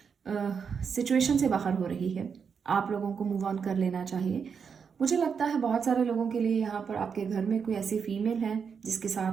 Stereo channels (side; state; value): left; quieter; 6.3 dB